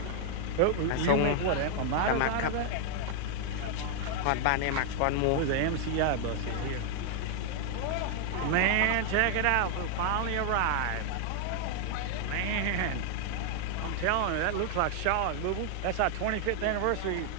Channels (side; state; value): both; different; correlation 0.00